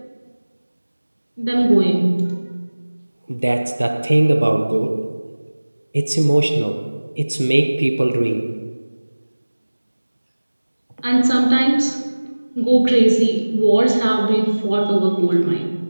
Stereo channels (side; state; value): both; inverted; correlation -1.00